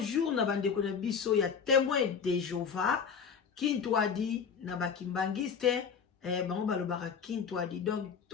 na bandeko na biso, ya témoin de Jéhovah. Kintwadi, na bakimbangiste, bango balobaka kintwadi. Donc,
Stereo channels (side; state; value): right; quieter; 6.5 dB